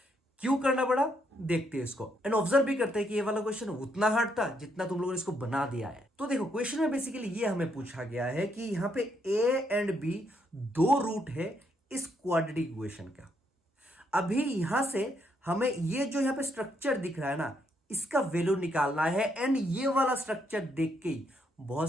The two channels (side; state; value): both; normal; correlation 0.75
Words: क्यों करना पड़ा देखते हैं इसको, एंड ऑब्जर्व भी करते हैं कि ये वाला क्वेश्चन उतना हार्ड था जितना तुम लोगों ने इसको बना दिया है। तो देखो क्वेश्चन में बेसिकली ये हमें पूछा गया है कि यहां पे ए एंड बी दो रूट है इस क्वाड्रेटिक इक्वेशन का। अभी यहां से हमें ये जो यहां पे स्ट्रक्चर दिख रहा है ना, इसका वैल्यू निकालना है। एंड ये वाला स्ट्रक्चर देख के ही